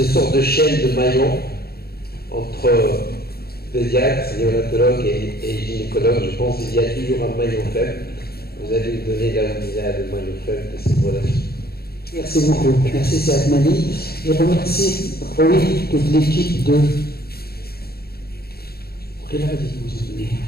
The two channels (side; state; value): right; late; 0.45 ms